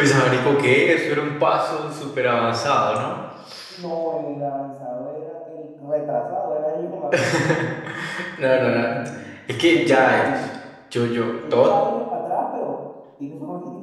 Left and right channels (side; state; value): both; identical; correlation 1.00